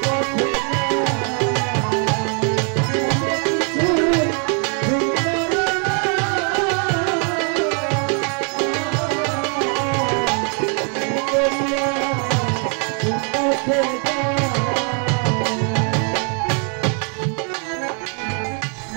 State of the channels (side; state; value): left; quieter; 39.9 dB